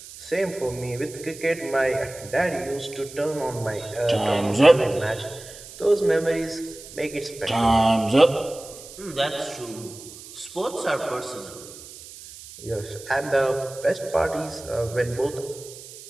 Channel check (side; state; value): right; noise; hiss, 16 dB below the sound